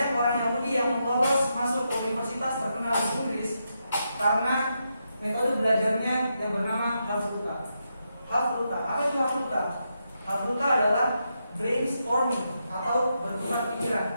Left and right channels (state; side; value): inverted; both; correlation -0.84